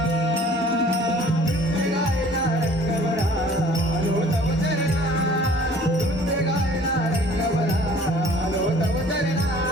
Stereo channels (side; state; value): both; normal; correlation 0.52